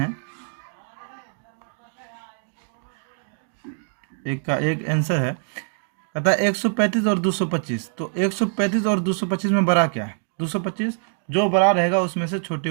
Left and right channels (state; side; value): silent; left; digital silence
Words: एक का एक आंसर है, कहता है 135 और 225। तो 135 और 225 में बड़ा क्या है? 225। जो बड़ा रहेगा उसमें से